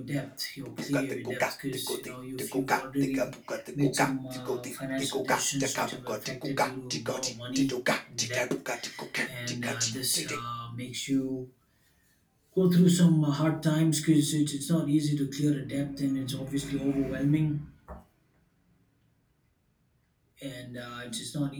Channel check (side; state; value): both; identical; correlation 1.00